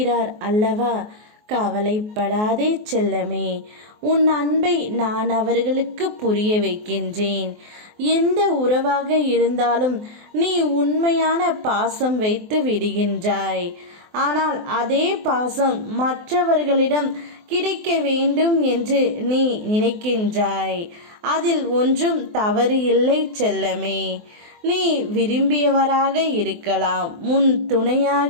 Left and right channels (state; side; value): late; left; 24 ms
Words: அல்லவா? கவலைப்படாதே செல்லமே, உன் அன்பை நான் அவர்களுக்கு புரிய வைக்கின்றேன். எந்த உறவாக இருந்தாலும் நீ உண்மையான பாசம் வைத்து விடுகின்றாய். ஆனால் அதே பாசம் மற்றவர்களிடம் கிடைக்க வேண்டும் என்று நீ நினைக்கின்றாய். அதில் ஒன்றும் தவறு இல்லை செல்லமே. நீ விரும்பியவராக இருக்கலாம், உன்